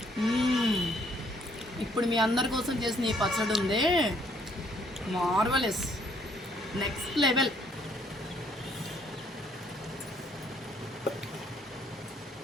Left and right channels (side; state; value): both; normal; correlation 0.66